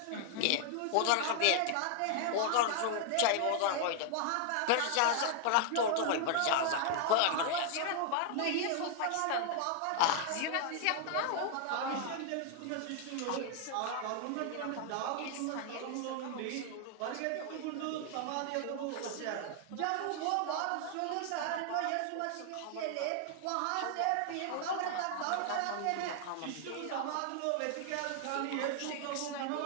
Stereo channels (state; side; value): different; both; correlation 0.00